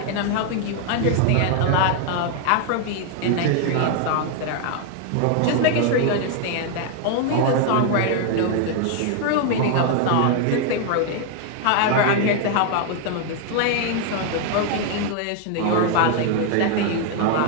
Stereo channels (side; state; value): both; different; correlation 0.00